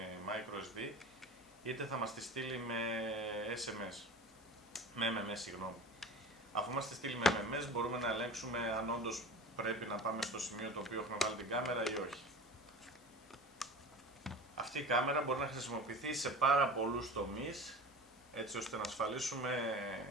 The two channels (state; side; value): normal; both; correlation 0.35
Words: microSD, είτε θα μας τη στείλει με SMS. Με MMS, συγγνώμη. Αφού μας τη στείλει με MMS, μπορούμε να ελέγξουμε αν όντως πρέπει να πάμε στο σημείο το οποίο έχουμε βάλει την κάμερα ή όχι. Αυτή η κάμερα μπορεί να χρησιμοποιηθεί σε πάρα πολλούς τομείς, έτσι ώστε να ασφαλίσουμε